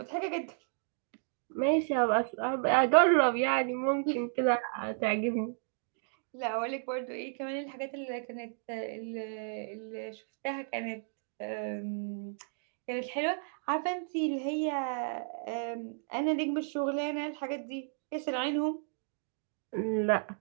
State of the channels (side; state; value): left; silent; digital silence